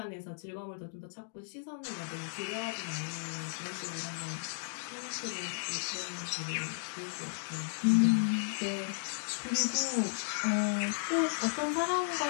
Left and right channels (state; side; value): silent; right; digital silence